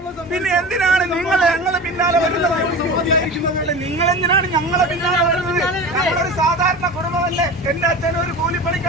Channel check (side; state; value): both; normal; correlation 0.31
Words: പിന്നെ എന്തിനാണ് നിങ്ങൾ ഞങ്ങളെ പിന്നാലെ വരുന്നത്? നിങ്ങൾ എന്തിനാണ് ഞങ്ങളെ പിന്നാലെ വരുന്നത്? ഞങ്ങളൊരു സാധാരണ കുടുംബമല്ലേ? എന്റെ അച്ഛൻ ഒരു